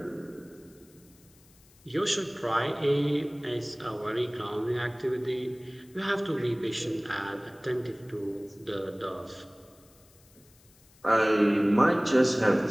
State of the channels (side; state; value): left; noise; hiss, 28 dB below the sound